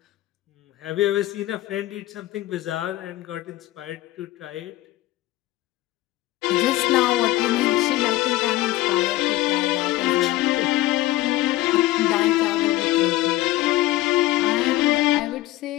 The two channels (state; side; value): quieter; right; 16.6 dB